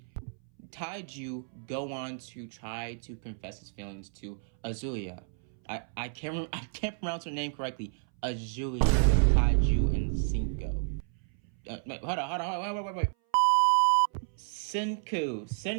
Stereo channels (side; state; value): left; silent; 57 dB below the other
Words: Taiju go on to try to confess his feelings to Azuya. I can't pronounce her name correctly. Azuya, Taiju, and Senku. Hold on, wait. Senku,